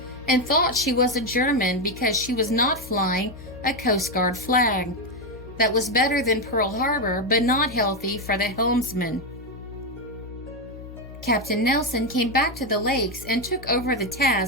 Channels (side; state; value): left; noise; hum, 15 dB below the sound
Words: and thought she was a German because she was not flying a Coast Guard flag. That was better than Pearl Harbor, but not healthy for the helmsman. Captain Nelson came back to the lakes and took over the